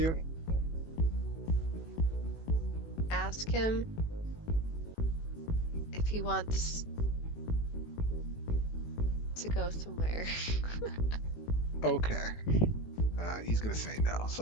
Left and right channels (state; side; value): late; right; 18 ms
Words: Ask him if he wants to go somewhere. Okay. He's gonna say no,